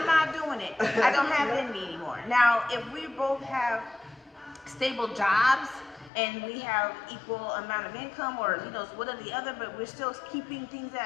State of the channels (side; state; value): right; drops out; at 6.1 s